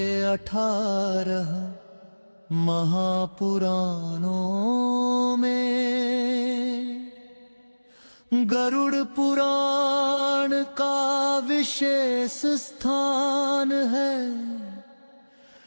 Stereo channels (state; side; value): inverted; both; correlation -1.00